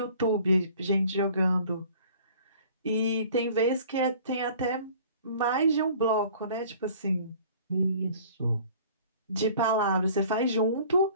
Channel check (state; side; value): inverted; both; correlation -0.50